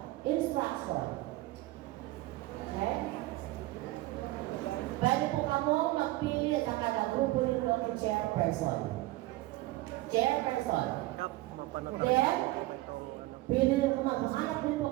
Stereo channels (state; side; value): quieter; left; 18.3 dB